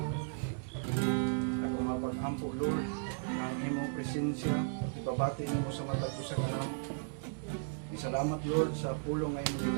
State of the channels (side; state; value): left; silent; digital silence